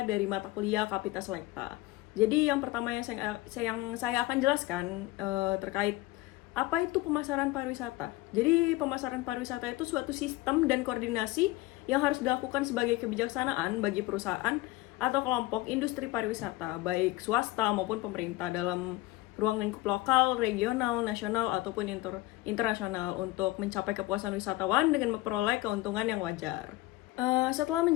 dari mata kuliah Kapita Selekta. Jadi yang pertama yang saya akan jelaskan terkait apa itu pemasaran pariwisata. Jadi pemasaran pariwisata itu suatu sistem dan koordinasi yang harus dilakukan sebagai kebijaksanaan bagi perusahaan atau kelompok industri pariwisata, baik swasta maupun pemerintah dalam ruang lingkup lokal, regional, nasional, ataupun internasional untuk mencapai kepuasan wisatawan dengan memperoleh keuntungan yang wajar. Setelah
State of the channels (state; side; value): quieter; right; 18.5 dB